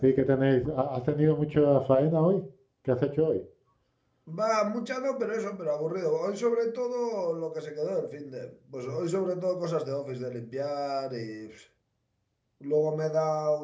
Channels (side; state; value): both; identical; correlation 1.00